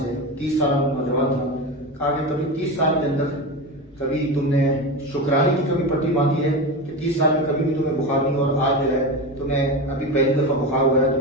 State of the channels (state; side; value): normal; both; correlation 0.22